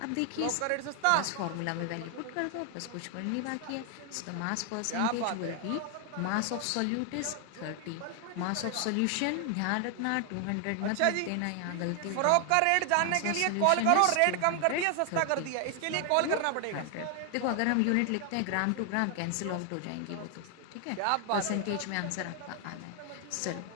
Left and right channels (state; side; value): different; both; correlation 0.00